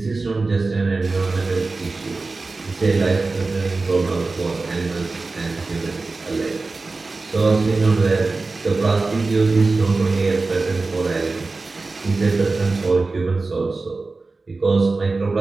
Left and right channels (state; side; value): quieter; left; 3.7 dB